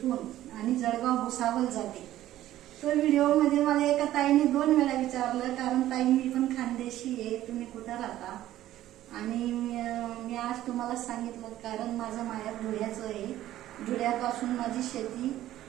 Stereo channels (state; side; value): quieter; left; 13.7 dB